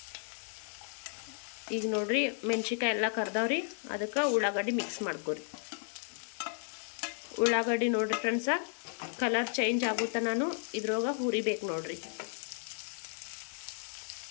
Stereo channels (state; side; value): silent; right; 55 dB below the other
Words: ಈಗ ನೋಡ್ರಿ ಮೆಣಸಿನ್ಕಾಯಿ ಎಲ್ಲ ಕರ್ದವ್ರಿ. ಅದಕ್ಕೆ ಉಳ್ಳಾಗಡ್ಡಿ ಮಿಕ್ಸ್ ಮಾಡ್ಕೋರಿ. ಉಳ್ಳಾಗಡ್ಡಿ ನೋಡ್ರಿ ಫ್ರೆಂಡ್ಸ ಕಲರ್ ಚೇಂಜ್ ಆಗುತ್ತಾ ನಾನು ಇದ್ರೊಳಗೆ ಹುರಿಬೇಕು ನೋಡ್ರಿ.